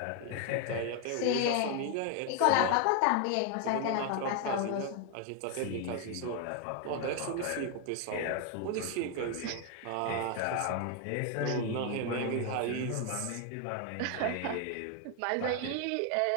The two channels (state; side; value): different; both; correlation 0.01